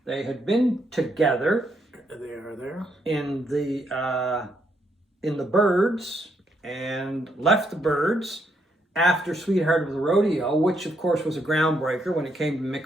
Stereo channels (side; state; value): both; normal; correlation 0.76